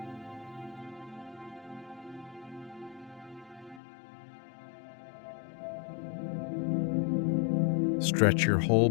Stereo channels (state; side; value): drops out; right; at 3.8 s